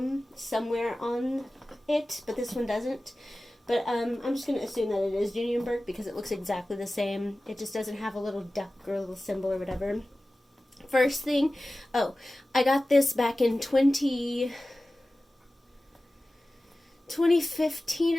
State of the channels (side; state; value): both; normal; correlation 0.96